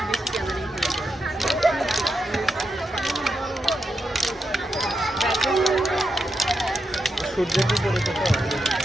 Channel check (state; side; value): normal; both; correlation 0.86